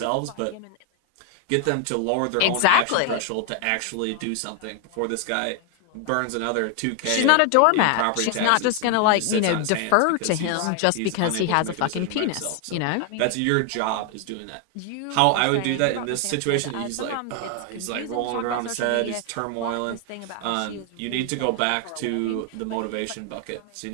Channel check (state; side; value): different; both; correlation 0.00